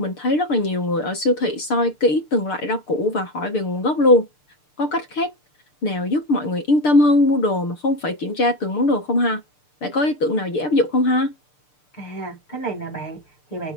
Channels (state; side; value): late; right; 6.7 ms